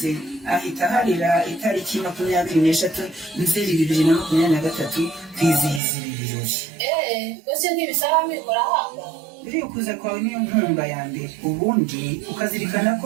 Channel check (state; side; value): drops out; left; at 5.8 s